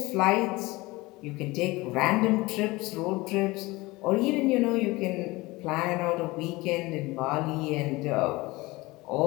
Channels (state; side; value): quieter; right; 21.6 dB